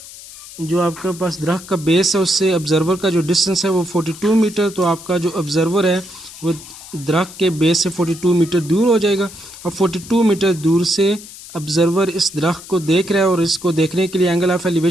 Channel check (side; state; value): left; noise; hiss, 16 dB below the sound